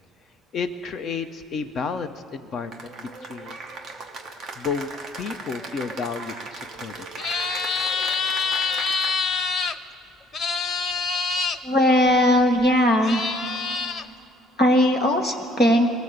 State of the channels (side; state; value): both; normal; correlation 0.61